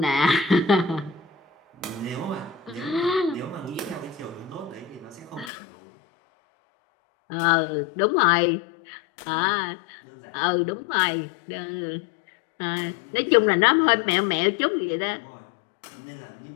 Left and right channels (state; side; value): drops out; right; at 5.5 s